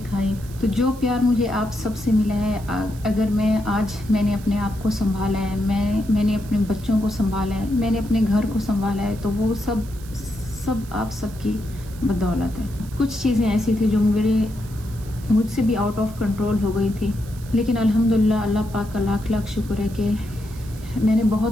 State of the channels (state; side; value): noise; right; hiss, 21 dB below the sound